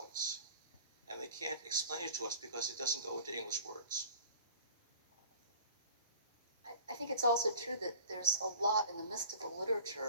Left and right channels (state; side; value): inverted; both; correlation -0.43